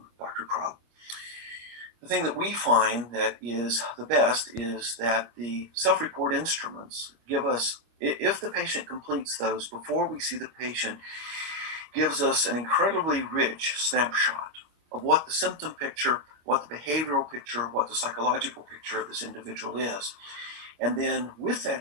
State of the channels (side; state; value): left; late; 26 ms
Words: Dr. Crow, the thing that we find that is the best is that the self-report instruments give us, if the patient completes those before we see the patient, gives us an incredibly rich snapshot of what the symptom picture, what the behavioral picture, what the psychological picture of this individual is. And then with that